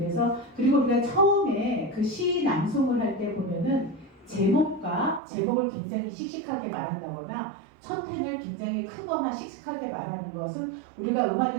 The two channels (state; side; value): drops out; left; at 5.2 s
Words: 그리고 우리가 처음에 그 시 낭송을 할 때 보면은 제목을 굉장히 씩씩하게 말한다거나 첫 펜을 굉장히 크거나 씩씩하게 말하는 것은 우리가